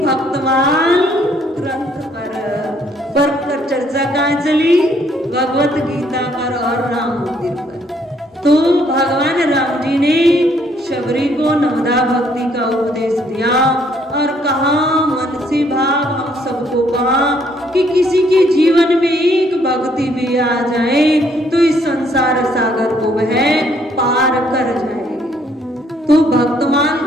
ग्रंथ पर चर्चा कहाँ चली? भगवत गीता पर और राम मंदिर पर। तो भगवान राम जी ने शबरी को नवधा भक्ति का उपदेश दिया और कहा, मन से भाव हम सबको कहा कि किसी के जीवन में एक भक्ति भी आ जाए तो इस संसार सागर को वह पार कर जाएगी। तो भक्तमाल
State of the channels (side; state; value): both; normal; correlation 0.67